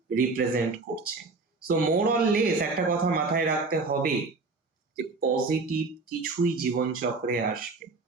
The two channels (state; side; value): quieter; left; 3.9 dB